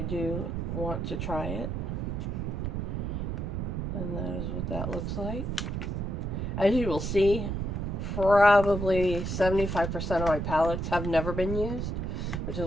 want to try it. And that is what that looks like. As you will see, probably 75% of my palettes have never been used, which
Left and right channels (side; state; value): right; noise; rumble, 2 dB below the sound